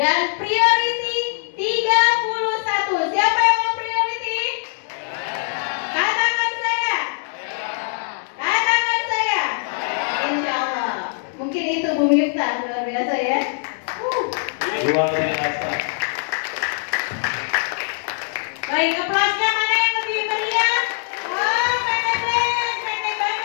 priority 31. Siapa yang mau priority? Katakan saya. Katakan saya. Insya Allah. Mungkin itu Bu Miftah, luar biasa ya. Luar biasa. Baik, aplausnya mana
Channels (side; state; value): right; silent; digital silence